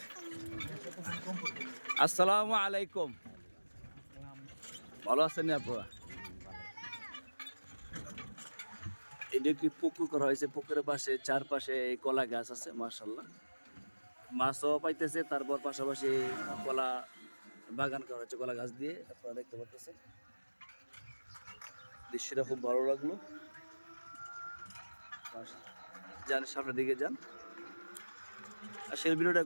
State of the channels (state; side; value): inverted; both; correlation -1.00